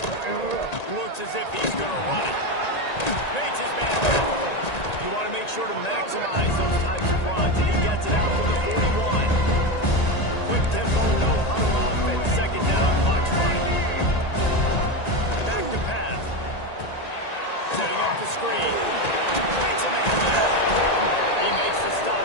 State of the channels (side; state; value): right; late; 1.9 ms